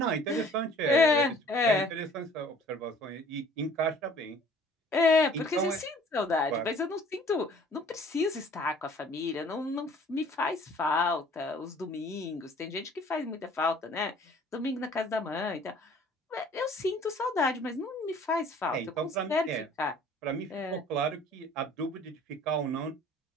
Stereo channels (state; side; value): normal; both; correlation 0.53